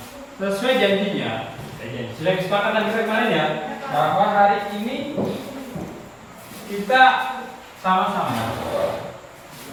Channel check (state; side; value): identical; both; correlation 1.00